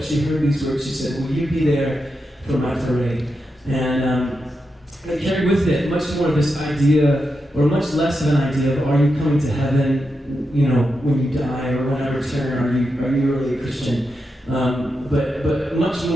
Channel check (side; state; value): both; normal; correlation 0.87